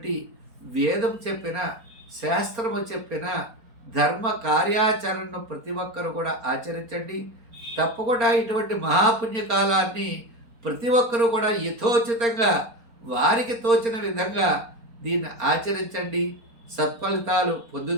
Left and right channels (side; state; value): left; late; 4.3 ms